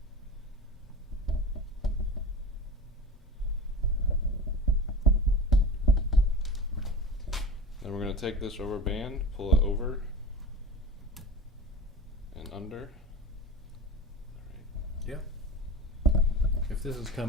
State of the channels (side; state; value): both; normal; correlation 0.33